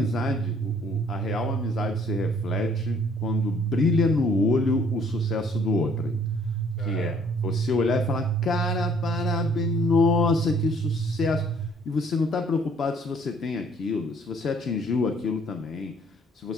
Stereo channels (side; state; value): both; normal; correlation 0.60